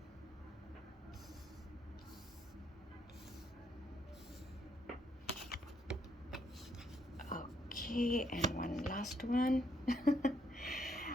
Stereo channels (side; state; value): both; normal; correlation 0.73